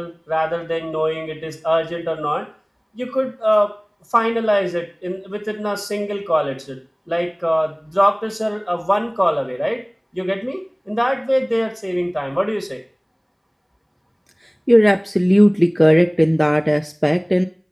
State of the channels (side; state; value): both; identical; correlation 1.00